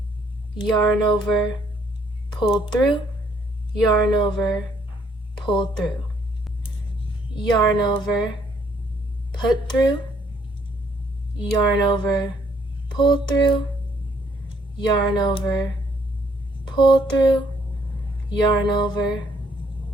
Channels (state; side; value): normal; both; correlation 0.67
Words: yarn over, pull through, yarn over, pull through, yarn over, put through, yarn over, pull through, yarn over, pull through, yarn over,